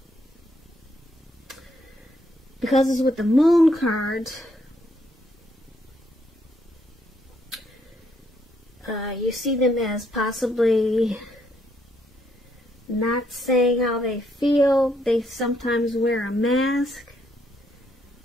because it's with the Moon card, you see them as possibly not saying how they feel. They sometimes wear a mask.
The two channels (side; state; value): both; normal; correlation 0.73